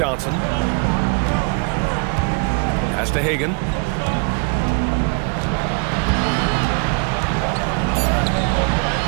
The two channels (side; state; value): left; quieter; 34.7 dB